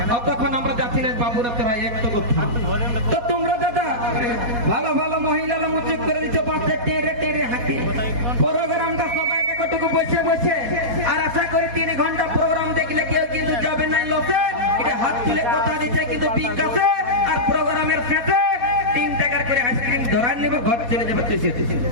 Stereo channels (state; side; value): late; left; 4.2 ms